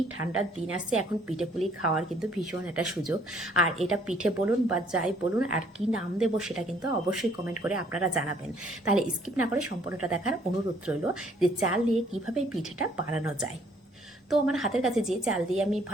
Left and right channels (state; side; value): normal; both; correlation 0.62